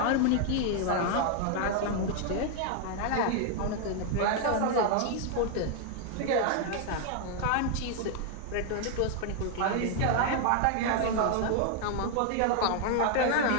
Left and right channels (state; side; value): different; both; correlation 0.00